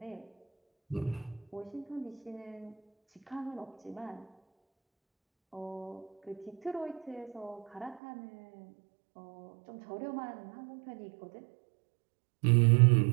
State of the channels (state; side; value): drops out; left; at 8.0 s